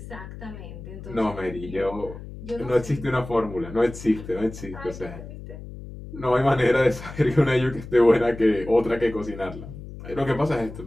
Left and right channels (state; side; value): noise; left; hum, 13 dB below the sound